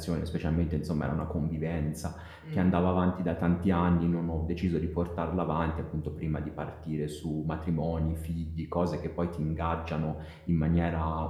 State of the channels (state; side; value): identical; both; correlation 1.00